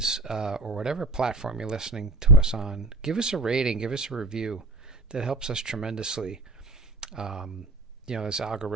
or whatever platform you're listening to us on. Give us a rating, give us a review. That helps us tremendously. There's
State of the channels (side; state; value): left; quieter; 3.0 dB